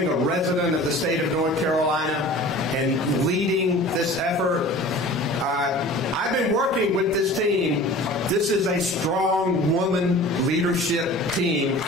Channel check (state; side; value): normal; both; correlation 0.42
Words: a resident of the state of North Carolina and leading this effort. I've been working with this team. This is a strong woman leadership team